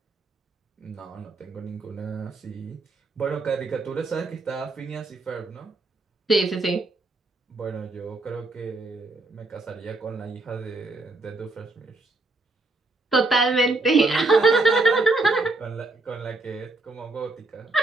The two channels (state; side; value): quieter; left; 3.1 dB